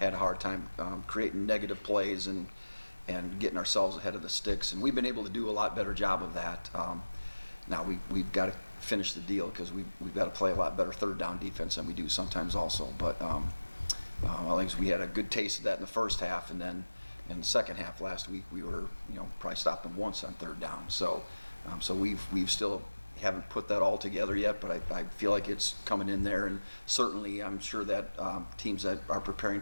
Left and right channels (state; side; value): inverted; both; correlation -1.00